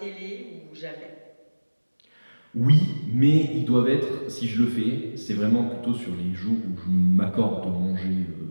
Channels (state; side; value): inverted; both; correlation -1.00